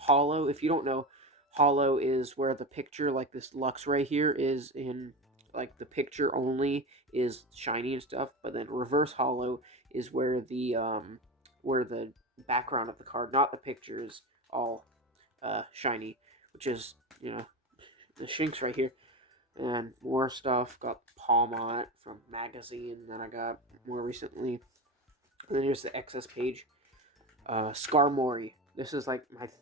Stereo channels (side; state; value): both; normal; correlation 0.22